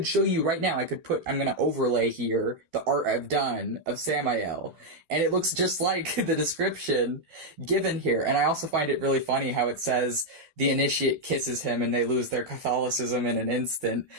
show you right now. I'm gonna overlay here the art I've done of Samael, and it looks just like the description given here. And I also find it really funny how it says the initiate kisses him and they lose their Catholicism in an instant,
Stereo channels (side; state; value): left; late; 12 ms